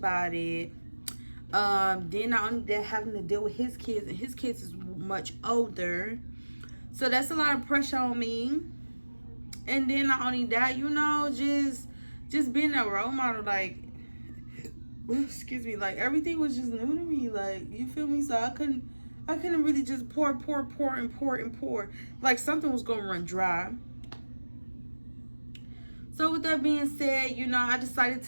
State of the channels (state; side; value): inverted; both; correlation -1.00